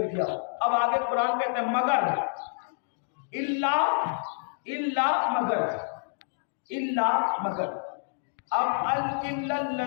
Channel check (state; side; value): silent; right; digital silence